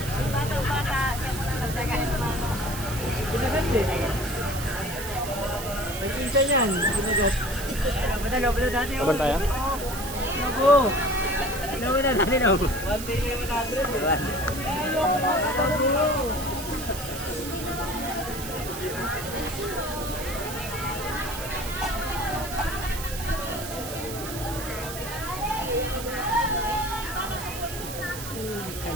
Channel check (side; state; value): right; noise; hiss, 9 dB below the sound